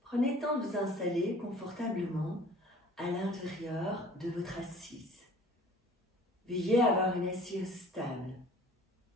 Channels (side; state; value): both; normal; correlation 0.49